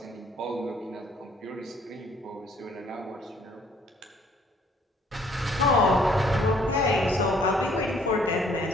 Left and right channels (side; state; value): both; normal; correlation 0.61